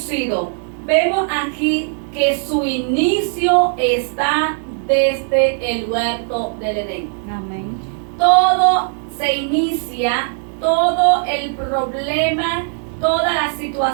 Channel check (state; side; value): silent; left; 64 dB below the other